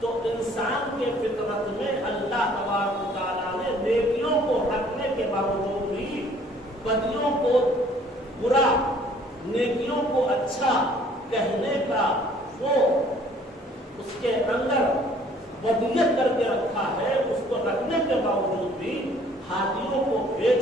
انسان کے فطرت میں اللہ تبارک و تعالیٰ نے نیکیوں کو رکھنے کے باوجود بھی بدیوں کو برا، نیکیوں کو اچھا کہنے کا وہ اس کے اندر ودیت کر کے رکھا ہے۔ اس کو رکھنے کے باوجود بھی ہادیوں کو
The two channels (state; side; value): normal; both; correlation 0.57